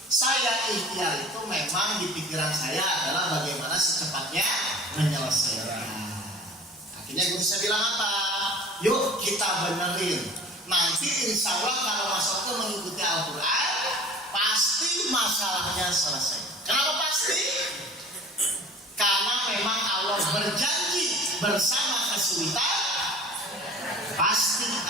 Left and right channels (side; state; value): both; normal; correlation 0.44